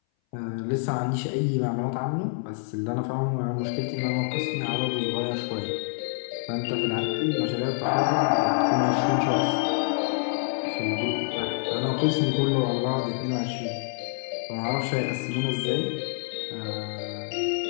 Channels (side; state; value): right; silent; 59 dB below the other